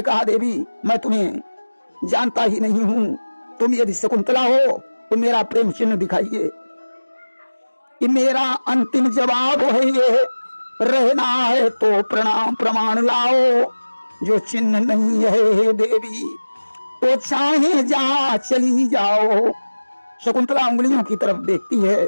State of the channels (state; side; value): inverted; both; correlation -1.00